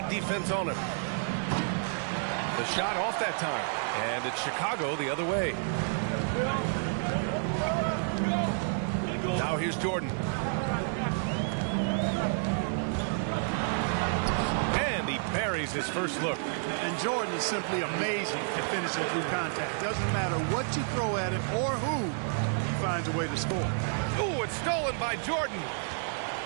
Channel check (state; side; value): silent; left; digital silence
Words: defense on him. The shot off that time. And it's Chicago the other way. Now here's Jordan. And he buries his first look. And Jordan is simply amazing at finishing through contact. Doesn't matter what you throw at him or who, he finds a way to score. Ooh, it's stolen by Jordan.